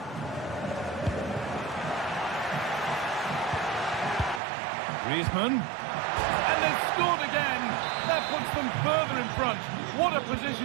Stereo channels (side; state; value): left; drops out; at 4.4 s